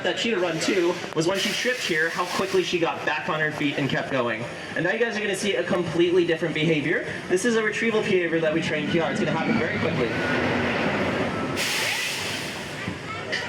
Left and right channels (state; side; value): identical; both; correlation 1.00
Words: that cheetah run, too, was when she tripped here, how quickly she got back on her feet and kept going. And now you guys are going to see a completely different behavior. This is a retrieval behavior that we trained Kiara. It's going to happen very quickly.